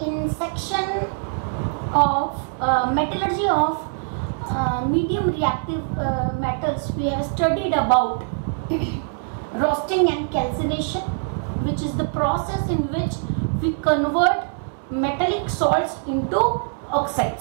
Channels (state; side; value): silent; left; 63 dB below the other